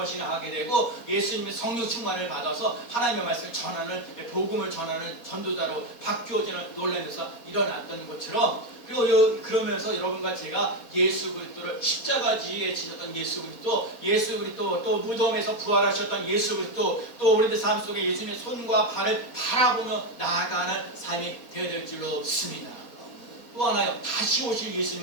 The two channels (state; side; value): late; right; 4.2 ms